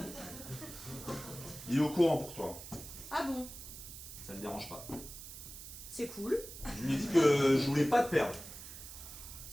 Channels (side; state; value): right; noise; hiss, 12 dB below the sound